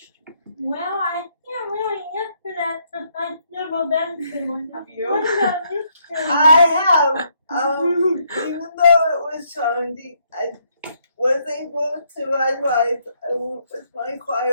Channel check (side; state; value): both; inverted; correlation -0.73